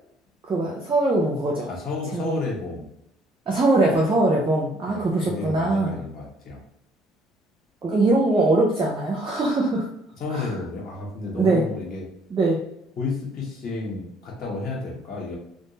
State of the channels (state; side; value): normal; both; correlation 0.64